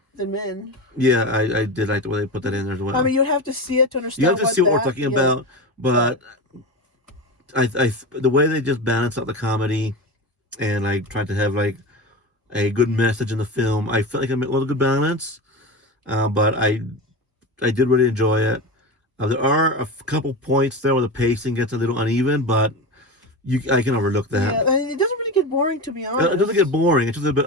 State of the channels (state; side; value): normal; both; correlation 0.24